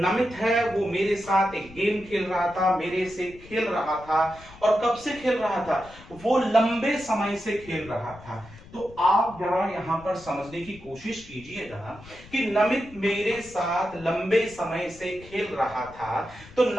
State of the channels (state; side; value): noise; left; rumble, 20 dB below the sound